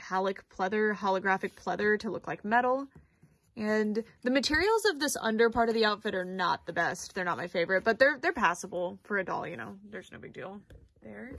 pleather, holographic pleather to look like metal. And the materials of this under part of the outfit are not the best. They're not my favorite, but they're passable for a doll, you know, there's no big deal there.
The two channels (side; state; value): both; identical; correlation 1.00